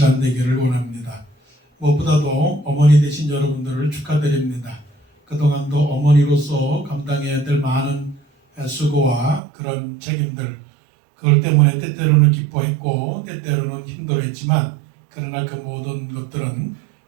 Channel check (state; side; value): drops out; left; at 9.4 s